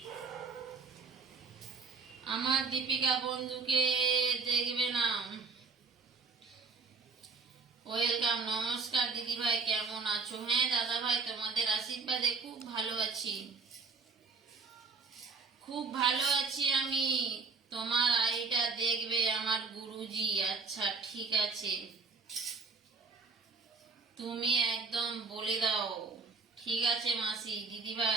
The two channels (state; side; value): quieter; left; 4.5 dB